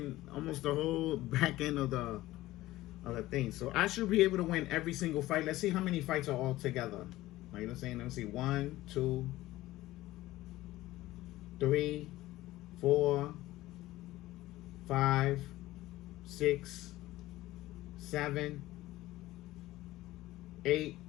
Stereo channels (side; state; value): right; quieter; 16.8 dB